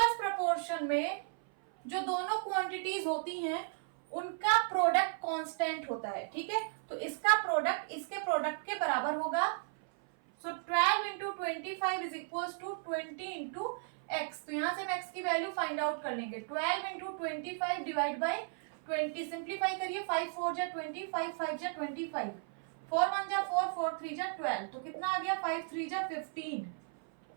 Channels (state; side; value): silent; left; 54 dB below the other